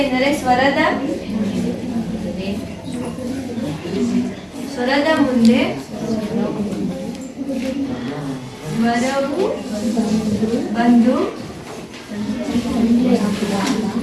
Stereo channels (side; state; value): both; identical; correlation 1.00